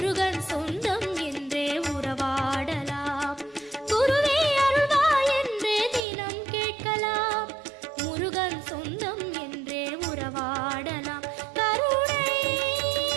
சொந்தம் என்றே உறவாடலாம். குருவே அருள்வாய் என்று தினம் கேட்கலாம், முருகன் சொந்தம் என்றே உறவாடலாம். கருணை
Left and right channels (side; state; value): left; drops out; at 6.1 s